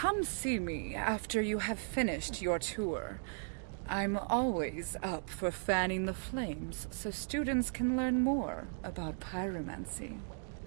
see me after you have finished your tour. I'm always up for fanning the flames so students can learn more about pyromancy.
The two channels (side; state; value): left; silent; digital silence